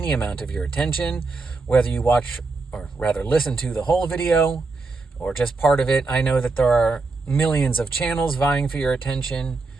amount of your attention, whether you watch, or rather listen to the whole video, or just part of it. I know that there are millions of channels vying for your attention,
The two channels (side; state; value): left; quieter; 3.8 dB